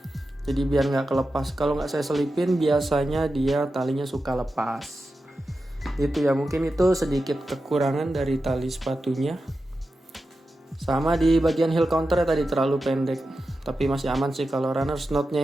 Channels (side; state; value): both; normal; correlation 0.91